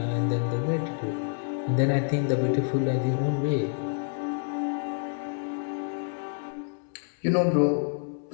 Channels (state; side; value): silent; right; 59 dB below the other